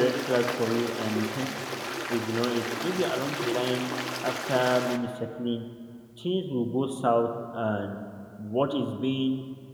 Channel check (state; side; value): identical; both; correlation 1.00